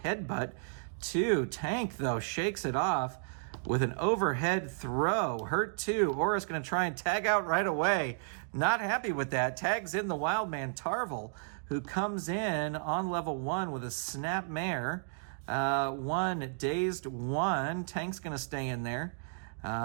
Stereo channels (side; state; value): left; silent; digital silence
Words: to Tank, though, shakes it off with an overhead throw. Hurt 2. Oris going to try and tag out right away. Not happy with that. Tags in the wild man, Tarvel, who comes in on level 1 with a snap mare. 1 dazed 1. Tank's going to stay in there.